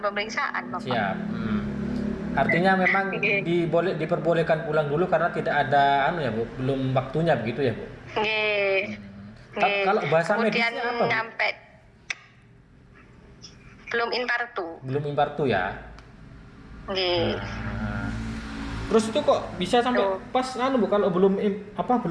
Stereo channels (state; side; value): identical; both; correlation 1.00